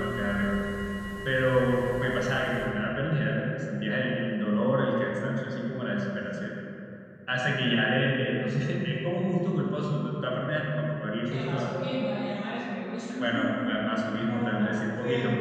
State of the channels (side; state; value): both; identical; correlation 1.00